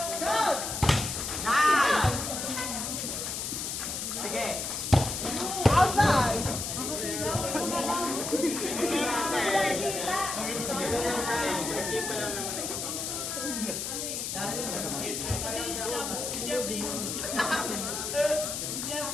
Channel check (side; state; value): left; noise; hiss, 3 dB below the sound